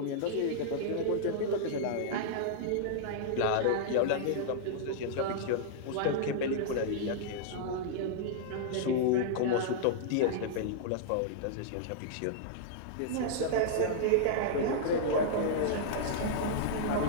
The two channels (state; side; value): different; both; correlation -0.02